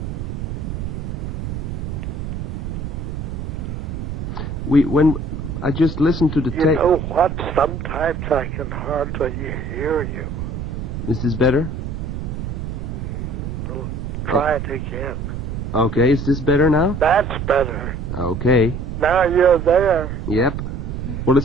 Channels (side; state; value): right; noise; rumble, 5 dB below the sound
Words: When I just listened to the tape. You know what? Sometimes I can hardly hear you. Is this better? Try it again. Okay, is this better now? That's better. Okay. Now you're there. Yep. Well,